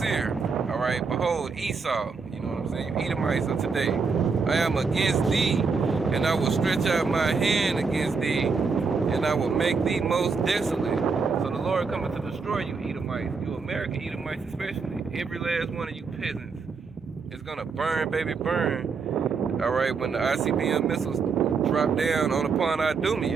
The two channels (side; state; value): left; quieter; 4.9 dB